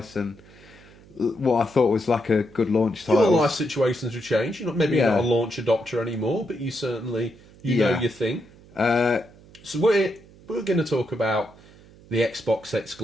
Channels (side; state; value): right; noise; hum, 24 dB below the sound